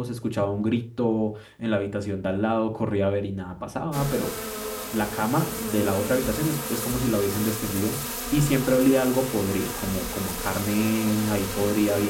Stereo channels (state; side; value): identical; both; correlation 1.00